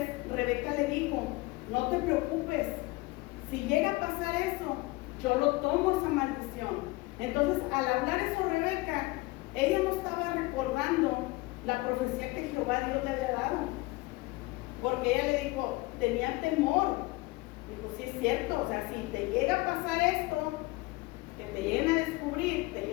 Rebeca le dijo, no te preocupes, si llega a pasar eso, yo lo tomo esa maldición. Entonces, al hablar eso Rebeca, ella no estaba recordando la profecía que Jehová Dios le había dado, porque ella le dijo, tenía temor. Dijo, sí es cierto, o sea, si te llega a pasar esto, que te lleguen a descubrir, te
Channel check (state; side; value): quieter; right; 22.3 dB